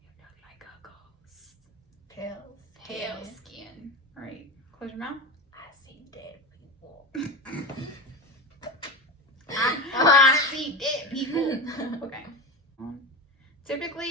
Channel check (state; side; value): normal; both; correlation 0.24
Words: You look like a ghost. Pale skin. All right, close your mouth. I see dead people. I see dead people. Okay.